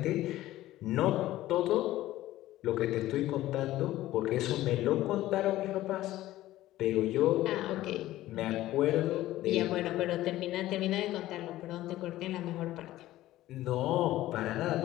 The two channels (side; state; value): right; quieter; 15.3 dB